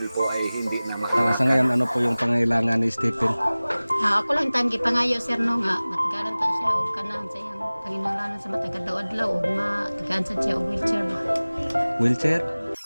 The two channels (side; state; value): both; inverted; correlation -0.99